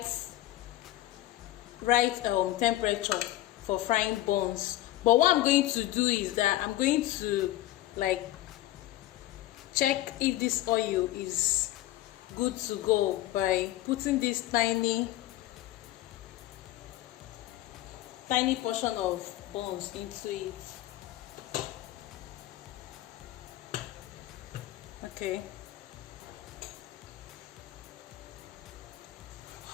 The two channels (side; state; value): right; quieter; 15.3 dB